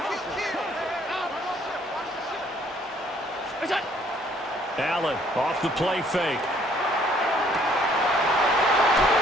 Allen off the play fake.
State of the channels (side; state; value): both; normal; correlation 0.62